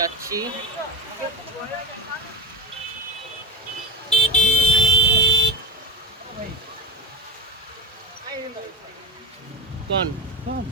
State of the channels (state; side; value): normal; both; correlation 0.26